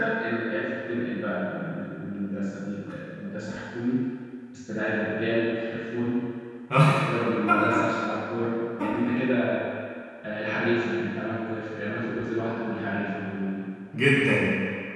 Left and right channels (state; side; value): identical; both; correlation 1.00